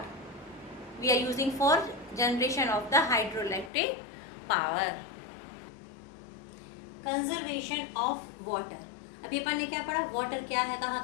we are using for generation of the hydroelectric power. Conservation of water. अभी अपन ने क्या पढ़ा, water क्या है, कहाँ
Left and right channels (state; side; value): drops out; right; at 3.7 s